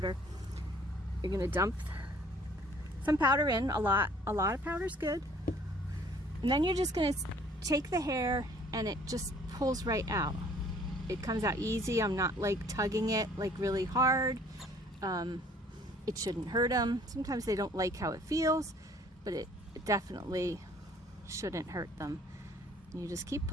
You're going to dump some powder in, a lot of powder is good. And then you're just going to take the hair and it just pulls right out. It comes out easy. I'm not like tugging it like really hard. It shouldn't hurt them. Sometimes they don't like how it feels, but it definitely shouldn't hurt them. You just keep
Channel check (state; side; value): normal; both; correlation 0.56